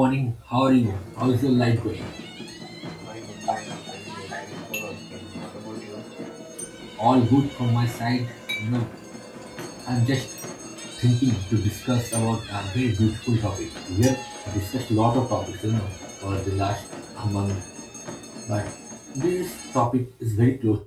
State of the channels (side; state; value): both; identical; correlation 1.00